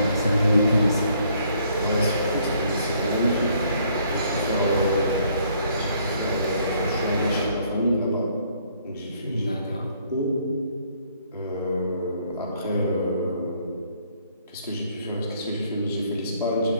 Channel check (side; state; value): both; inverted; correlation -0.66